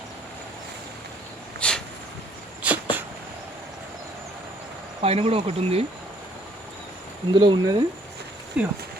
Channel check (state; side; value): normal; both; correlation 0.62